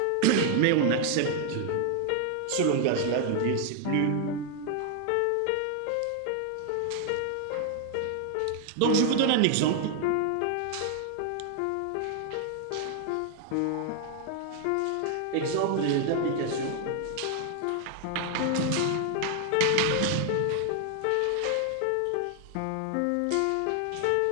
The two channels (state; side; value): different; both; correlation 0.00